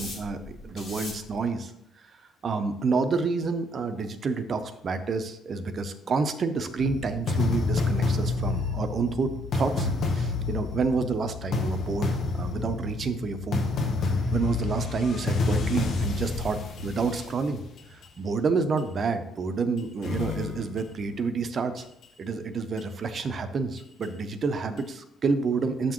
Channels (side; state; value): both; normal; correlation 0.69